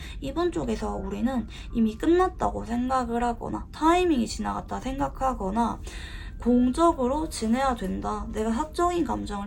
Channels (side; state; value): both; identical; correlation 1.00